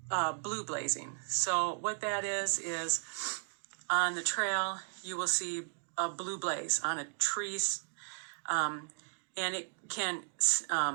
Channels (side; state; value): left; silent; digital silence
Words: blue blazing. So what that is on the trail, you will see a blue blaze on a tree, and it can